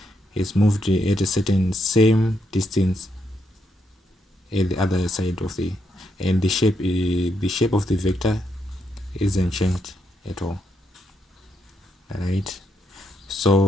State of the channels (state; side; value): normal; both; correlation 0.79